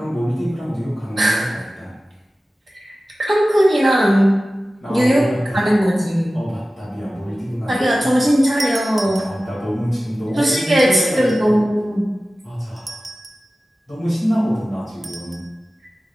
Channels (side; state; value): both; normal; correlation 0.96